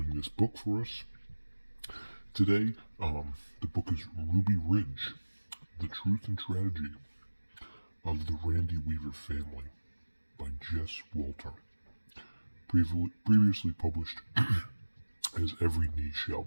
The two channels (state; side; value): inverted; both; correlation -1.00